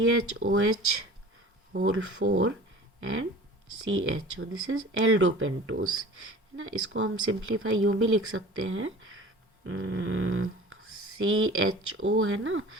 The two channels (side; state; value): both; normal; correlation 0.42